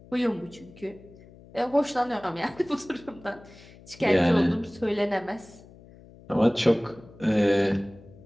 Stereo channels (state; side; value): noise; left; hum, 22 dB below the sound